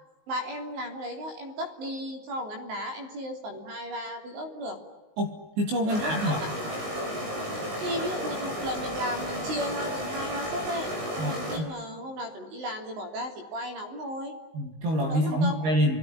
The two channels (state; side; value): late; left; 19 ms